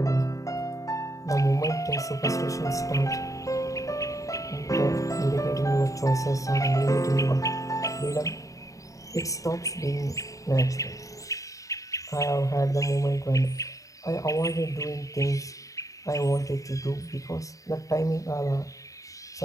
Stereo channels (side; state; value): right; late; 0.16 ms